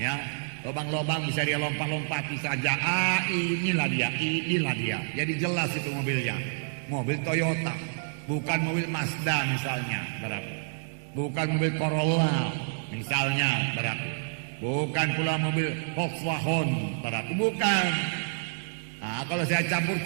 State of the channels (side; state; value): left; silent; digital silence